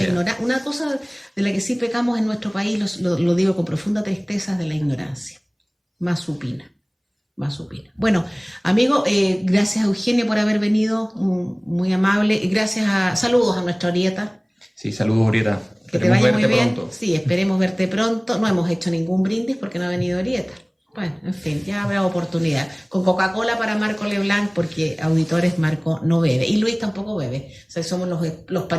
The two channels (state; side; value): identical; both; correlation 1.00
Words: ignorancia. Una cosa de la que sí pecamos en nuestro país, lo digo con profunda tristeza, es de la ignorancia. Más supina. Bueno, amigo, gracias a Eugenio por haber venido. Muy amable. Y saludos a nuestra Orieta. Sí, saludos, Orieta. Que te vaya muy bien. Pronto. Sí, esperemos verte pronto. No hemos hecho ningún brindis porque no ha venido Orieta. Bueno, en fin, ya habrá oportunidad. Con Coca-Cola para Marco Leblanc, porque auditores Marco no bebe. Y Luis tampoco bebe. O sea, somos los